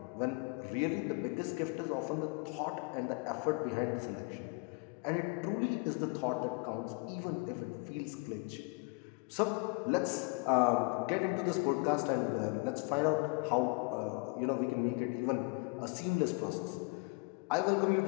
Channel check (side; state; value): right; quieter; 31.4 dB